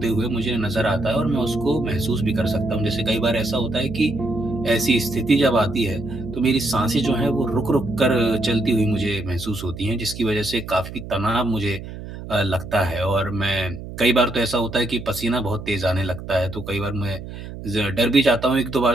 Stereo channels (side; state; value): right; noise; hum, 11 dB below the sound